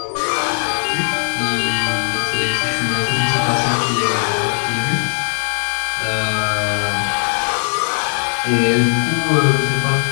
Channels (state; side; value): silent; right; digital silence